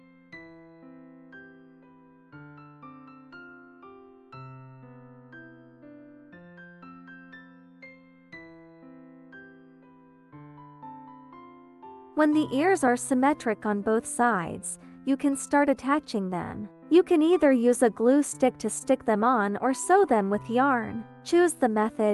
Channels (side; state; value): both; identical; correlation 1.00